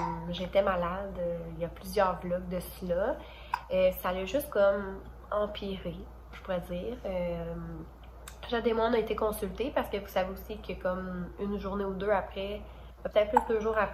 j'étais malade il y a plusieurs vlogs de cela. Ça a juste comme empiré, je pourrais dire. Jade et moi, on a été consultés parce que vous savez aussi que comme une journée ou deux après, peut-être plus 2 jours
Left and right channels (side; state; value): both; identical; correlation 1.00